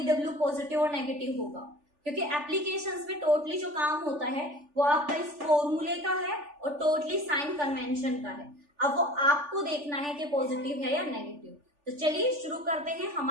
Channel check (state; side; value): late; left; 3.4 ms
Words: पॉजिटिव और नेगेटिव होगा। क्योंकि एप्लीकेशंस में टोटली जो काम होता है वो आपका इस फॉर्मूले का है और टोटली साइन कन्वेंशन का है। अब वो आपको देखना है कि पॉजिटिव है या नेगेटिव। तो चलिए शुरू करते हैं